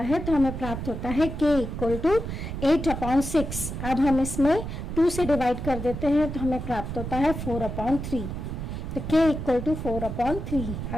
तो हमें प्राप्त होता है k इक्वल टू 8/6। अब हम इसमें 2 से डिवाइड कर देते हैं तो हमें प्राप्त होता है 4/3। तो k इक्वल टू 4/3,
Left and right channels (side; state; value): right; noise; rumble, 6 dB below the sound